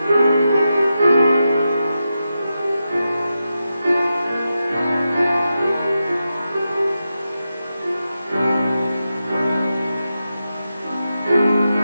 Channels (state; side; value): inverted; both; correlation -0.89